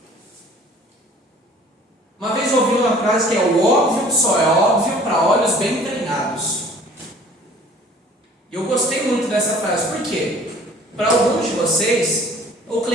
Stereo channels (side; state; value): both; normal; correlation 0.51